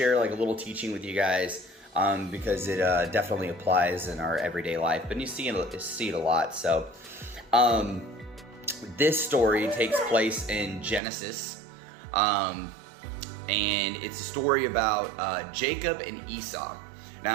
like a little teaching with you guys because it definitely applies in our everyday life, but you see it a lot. So this story takes place in Genesis, and it's a story about Jacob and Esau.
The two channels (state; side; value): drops out; left; at 11.0 s